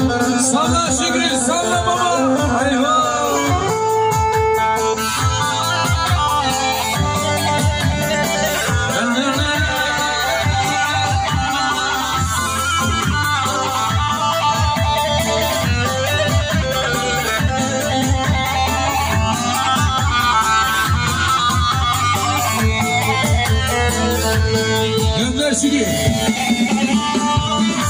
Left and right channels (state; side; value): identical; both; correlation 1.00